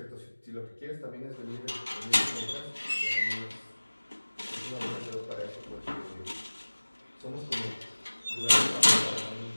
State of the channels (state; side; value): inverted; both; correlation -1.00